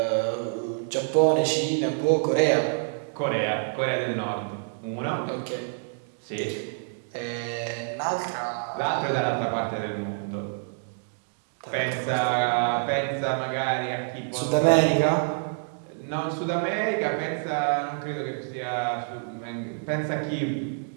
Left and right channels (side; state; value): left; silent; digital silence